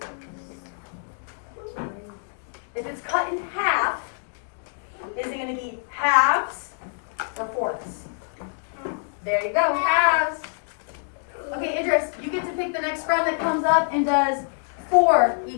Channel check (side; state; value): right; silent; digital silence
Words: If it's cut in half, is it going to be halves or fourths? There you go, halves. Okay, Idris, you get to pick the next friend that comes up and does 4